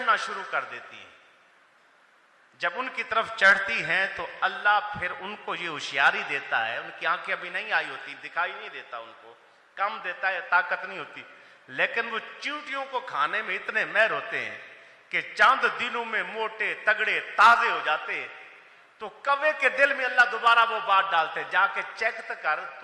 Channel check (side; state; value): both; identical; correlation 1.00